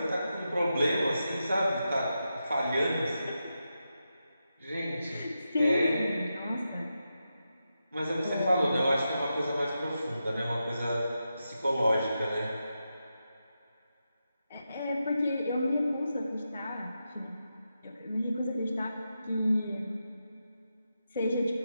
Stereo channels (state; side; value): inverted; both; correlation -0.88